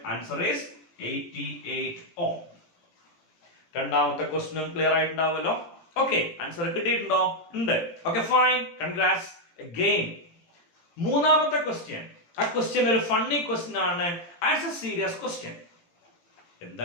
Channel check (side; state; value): right; late; 18 ms